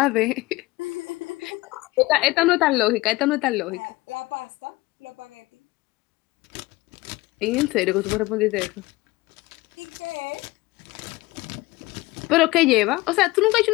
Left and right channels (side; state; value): right; quieter; 20.5 dB